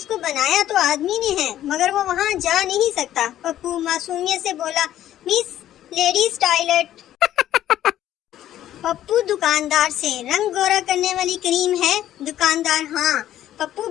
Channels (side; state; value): right; quieter; 12.4 dB